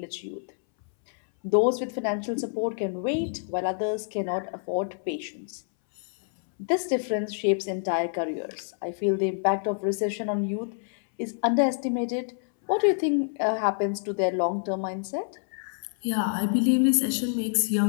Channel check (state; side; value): silent; right; 60 dB below the other